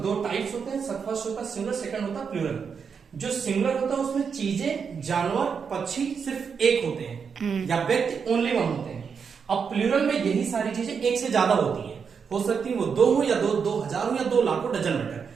दो टाइप्स होते हैं। फर्स्ट होता है सिंगुलर, सेकंड होता है प्लूरल। जो सिंगुलर होता है उसमें चीजें, जानवर, पक्षी सिर्फ एक होते हैं या व्यक्ति ओनली वन होते हैं। अब प्लूरल में यही सारी चीजें एक से ज्यादा होती हैं। हो सकती है वो दो हो या दो हजार हो या 2 लाख हो, डजन मैटर।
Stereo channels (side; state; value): left; quieter; 6.2 dB